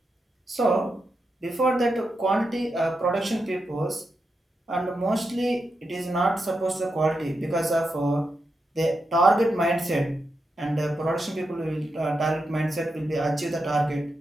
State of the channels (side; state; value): both; normal; correlation 0.86